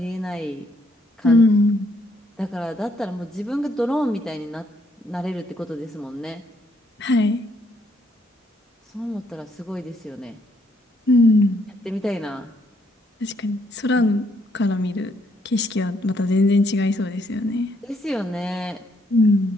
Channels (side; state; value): both; normal; correlation 0.71